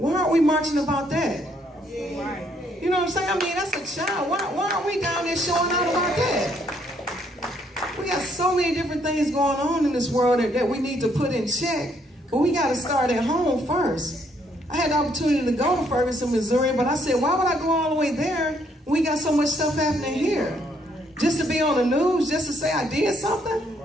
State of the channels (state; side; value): normal; both; correlation 0.70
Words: aren't we marching about that? You know what I'm saying? I mean, that's a child. Why aren't we down there showing out about that? We got so many different things going on in this world that we need to put in check. But we got to start at home first. I had the opportunity to go to Ferguson, Missouri, but I said, why would I go all the way there when we got so much stuff happening here? Just to be on the news, just to say I did something?